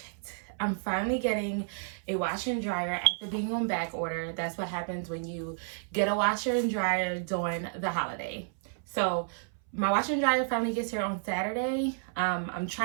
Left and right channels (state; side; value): silent; left; 57 dB below the other